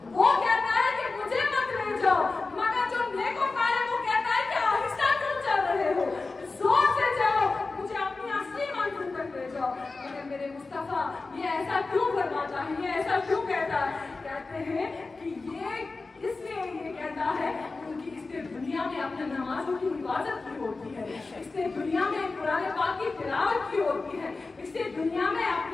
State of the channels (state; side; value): quieter; right; 3.8 dB